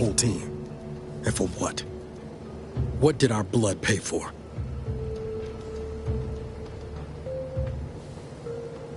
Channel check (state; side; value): identical; both; correlation 1.00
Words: team. And for what? What did our blood pay for?